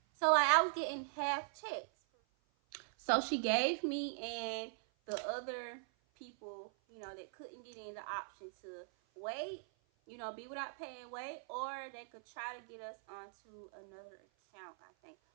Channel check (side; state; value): left; silent; 51 dB below the other